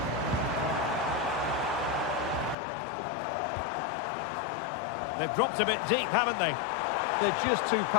They've dropped a bit deep, haven't they? They're just too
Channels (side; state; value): right; drops out; at 2.6 s